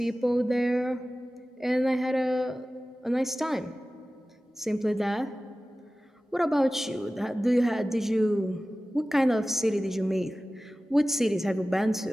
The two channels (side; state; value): both; normal; correlation 0.96